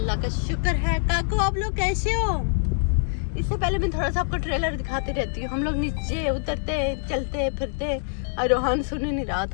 का शुक्र है। काकू आप लोग कैसे हो? इससे पहले मैं थोड़ा सा आपको ट्रेलर दिखाती रहती हूँ। हम लोग नीचे उतरते चलते फिरते और रोहन सुन ही नहीं रहा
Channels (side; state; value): right; silent; 62 dB below the other